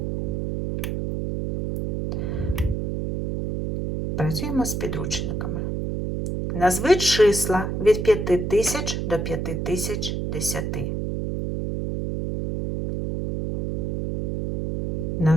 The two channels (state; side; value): noise; right; hum, 2 dB below the sound